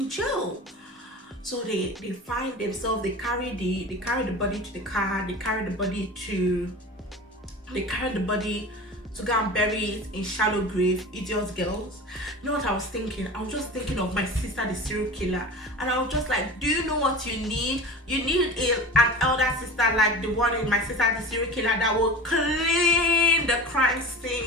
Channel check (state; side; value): normal; both; correlation 0.34